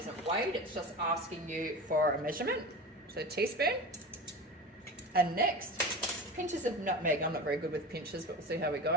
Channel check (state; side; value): normal; both; correlation 0.30